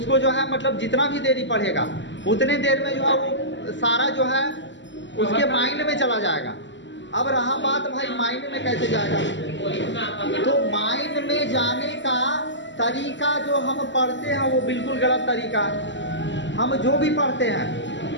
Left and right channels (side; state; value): right; late; 0.54 ms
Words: जो है मतलब जितना भी देरी पढ़ेगा उतने देर में जो है वो सारा जो है उसके माइंड में चला जाएगा। अब रहा बात भाई माइंड में कैसे जाएगा, तो माइंड में जाने का तरीका जो हम पढ़ते हैं वो बिल्कुल गलत तरीका है। हम जो भी पढ़ते हैं